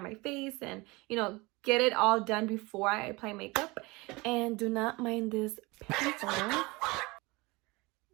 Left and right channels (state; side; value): quieter; left; 23.8 dB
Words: my face and, you know, get it all done before I apply makeup. And do not mind this pimple.